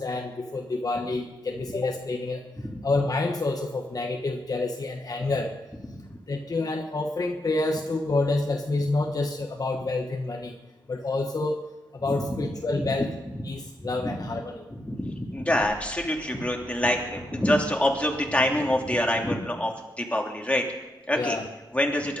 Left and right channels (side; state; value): both; normal; correlation 0.81